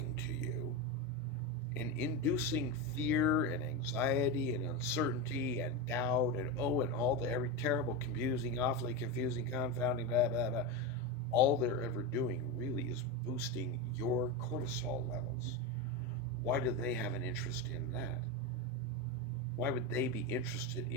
to you and inducing fear and anxiety and uncertainty and doubt and and all the every terrible, confusing, awfully confusing, confounding, blah, blah, blah, all they're ever doing really is boosting your cortisol levels. Why do they have an interest in that? Why would they be interested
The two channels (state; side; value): normal; both; correlation 0.15